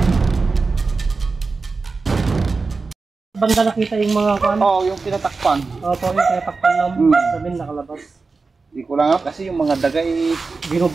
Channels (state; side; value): quieter; left; 4.2 dB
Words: Banda nakita yung mga kuan? Oo, yung pinatakpan. Oo, yung pinatakpan ng sabihin nakalabas. Hindi ko lang kasi yung mga daga